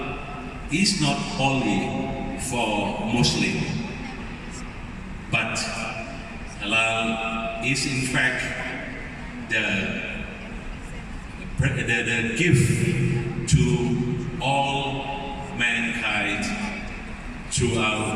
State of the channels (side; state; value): both; identical; correlation 1.00